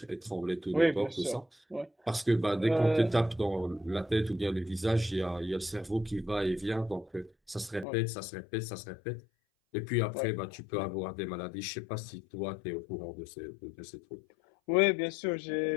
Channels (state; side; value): drops out; right; at 7.9 s